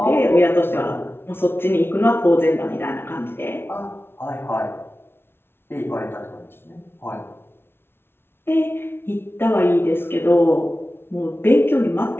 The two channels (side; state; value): right; late; 0.11 ms